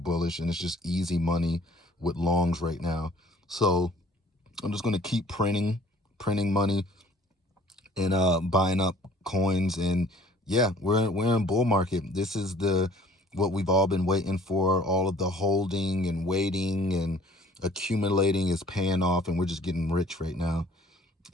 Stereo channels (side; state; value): both; normal; correlation 0.54